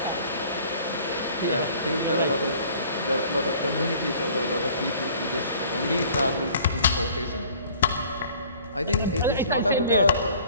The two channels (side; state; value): both; inverted; correlation -0.52